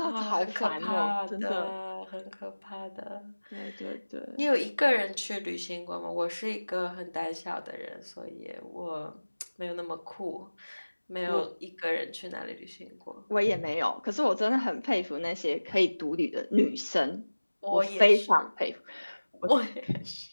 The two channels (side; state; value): both; inverted; correlation -1.00